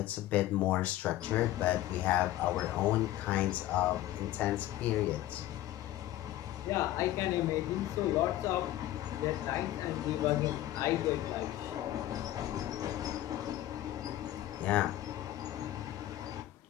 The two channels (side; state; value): right; quieter; 14.4 dB